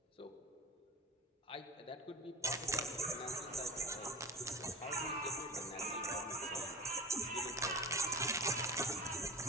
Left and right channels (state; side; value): normal; both; correlation 0.35